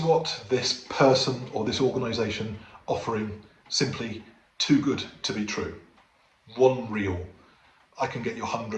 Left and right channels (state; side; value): identical; both; correlation 1.00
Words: what this person or this organization offering simply too good to be true? One reel, I can get you